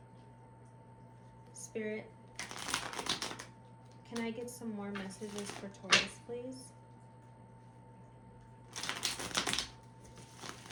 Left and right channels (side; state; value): both; identical; correlation 1.00